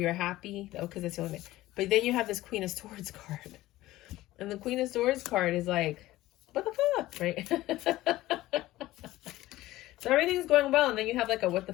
happy. Oh, because that's the only thing. But then you have this Queen of Swords card. And the Queen of Swords card is like, what the fuck, right? So everything's going well. And then you have like a what the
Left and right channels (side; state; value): right; quieter; 16.6 dB